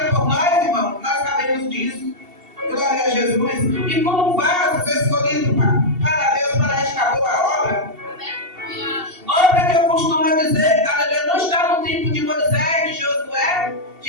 por nós, irmão. Nós sabemos disso. Glória a Jesus. E como vasos escolhidos para Deus para esta boa obra. Outra que eu costumo dizer, aleluia, não está no tempo de Moisés, de Josué,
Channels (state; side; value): late; left; 2.7 ms